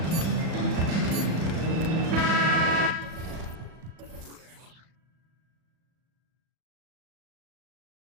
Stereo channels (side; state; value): left; late; 37 ms